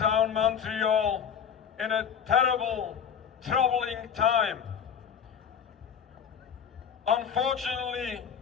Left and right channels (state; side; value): quieter; right; 7.6 dB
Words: Montreal in a terrible, troubling time. Unfortunately,